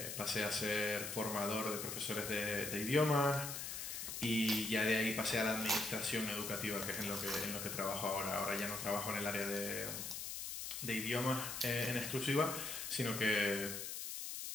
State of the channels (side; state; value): left; noise; hiss, 5 dB below the sound